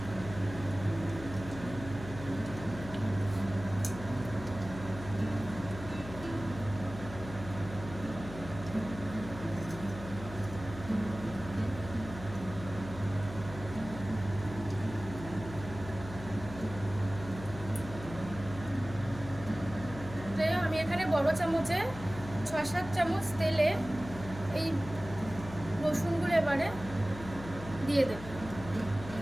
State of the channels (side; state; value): left; noise; hum, 12 dB below the sound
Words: আমি এখানে বড় চামচে 6-7 চামচ তেলে এই রসুনগুলো এবারে দিয়ে দেব।